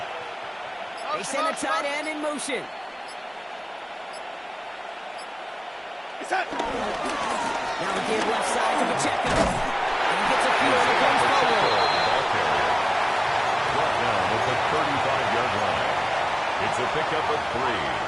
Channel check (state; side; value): identical; both; correlation 1.00